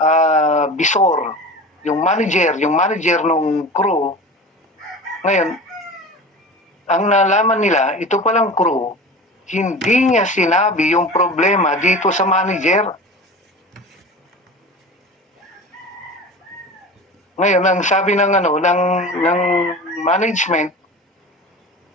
bisor, yung manager nung crew. Ngayon, ang nalaman nila, ito palang crew, hindi niya sinabi yung problema dito sa manager. Ngayon, ang sabi ng management,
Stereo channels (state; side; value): normal; both; correlation 0.34